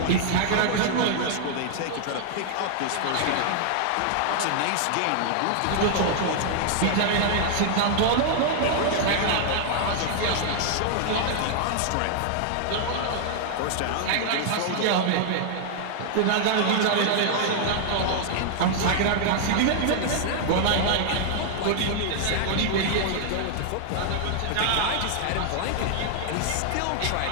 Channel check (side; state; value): both; different; correlation 0.00